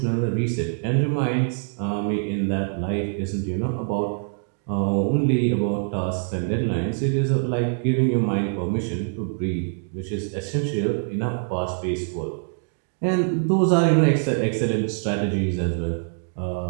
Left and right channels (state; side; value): silent; left; digital silence